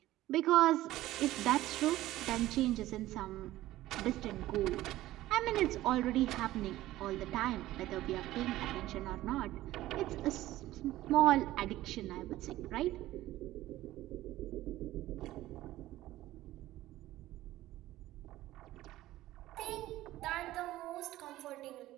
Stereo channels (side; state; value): left; quieter; 15.6 dB